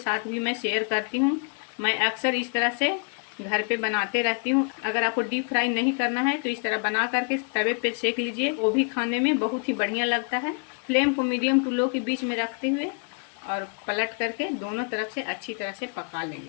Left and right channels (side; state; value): right; quieter; 39.5 dB